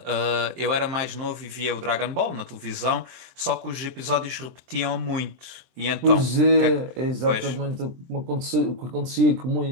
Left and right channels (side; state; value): left; late; 23 ms